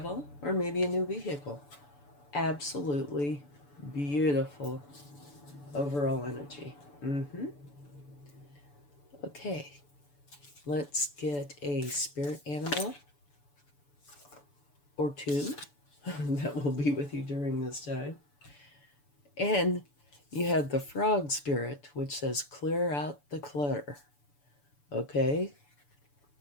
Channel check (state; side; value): late; right; 6.9 ms